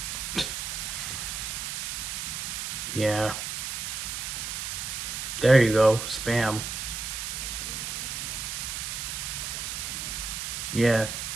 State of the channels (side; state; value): right; noise; hiss, 4 dB below the sound